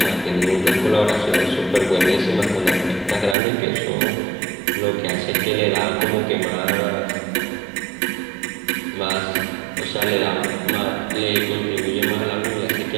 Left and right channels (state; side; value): drops out; left; at 3.4 s